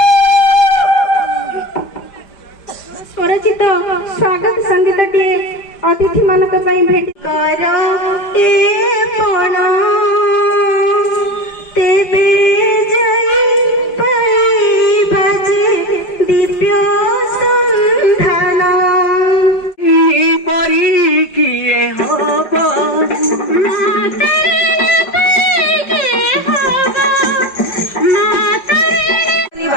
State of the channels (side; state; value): right; late; 5.0 ms